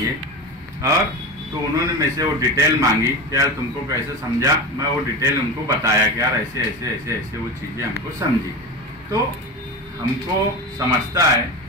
और तो उन्होंने मेरे से वो डिटेल मांगी कि यार तुमको कैसे समझा। मैं वो डिटेल उनको बताया कि यार ऐसे ऐसे ऐसे ऐसे वो चीज़ें हमको समझी। तो हमको समझता है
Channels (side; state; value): both; normal; correlation 0.25